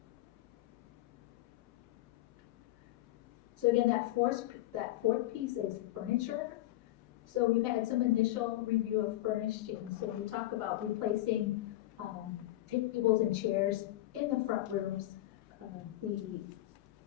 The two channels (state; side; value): quieter; right; 15.8 dB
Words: So again, that fourth piece is furniture. So we've had some initial review of furnishings. So we talk about replacing tables and chairs in the front rooms.